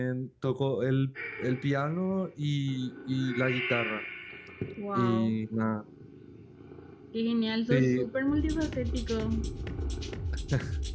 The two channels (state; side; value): identical; both; correlation 1.00